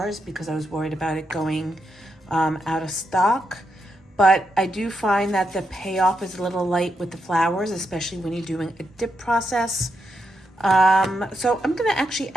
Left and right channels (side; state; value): both; normal; correlation 0.82